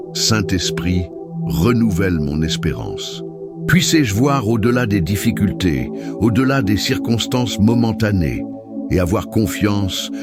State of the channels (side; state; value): both; identical; correlation 1.00